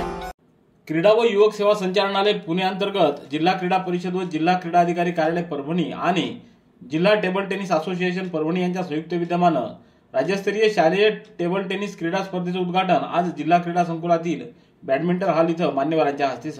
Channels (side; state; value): both; identical; correlation 1.00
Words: क्रीडा व युवक सेवा संचालनालय पुणे अंतर्गत जिल्हा क्रीडा परिषद व जिल्हा क्रीडा अधिकारी कार्यालय परभणी आणि जिल्हा टेबल टेनिस असोसिएशन परभणी यांच्या संयुक्त विद्यमानं राज्यस्तरीय शालेय टेबल टेनिस क्रीडा स्पर्धेचं उद्घाटन आज जिल्हा क्रीडा संकुलातील बॅडमिंटन हॉल इथं मान्यवरांच्या हस्ते